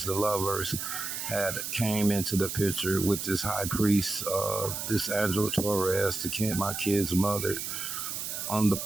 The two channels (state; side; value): noise; right; hiss, 5 dB below the sound